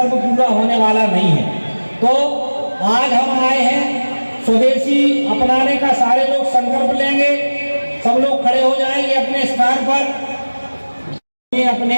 पूरा होने वाला नहीं है। तो आज हम आए हैं, स्वदेशी अपनाने का सारे लोग संकल्प लेंगे, सब लोग खड़े हो जाएंगे अपने स्थान पर अपने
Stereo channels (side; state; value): both; inverted; correlation -1.00